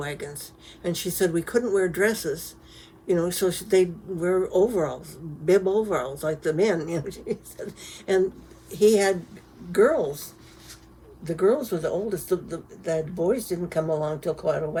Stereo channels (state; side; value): identical; both; correlation 1.00